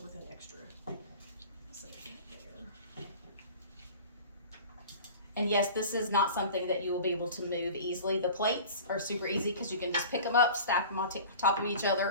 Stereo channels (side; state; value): both; inverted; correlation -0.39